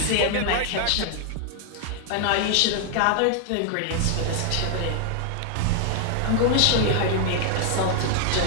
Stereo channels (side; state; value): both; different; correlation 0.00